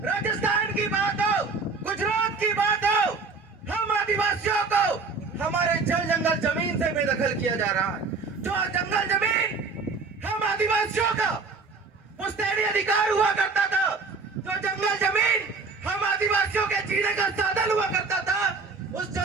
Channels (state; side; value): quieter; left; 4.5 dB